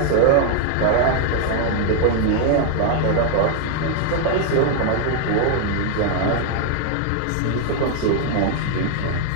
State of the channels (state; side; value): different; both; correlation 0.00